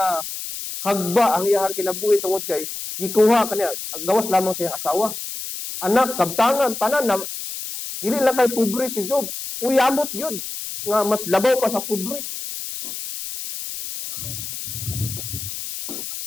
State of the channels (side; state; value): left; noise; hiss, 7 dB below the sound